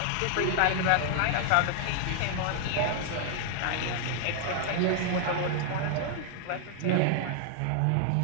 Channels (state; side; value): different; both; correlation 0.00